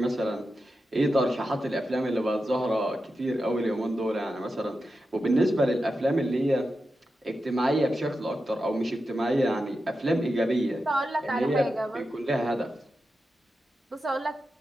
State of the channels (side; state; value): both; normal; correlation 0.90